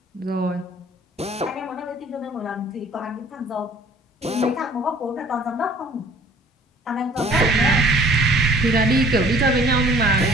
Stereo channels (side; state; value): both; normal; correlation 0.52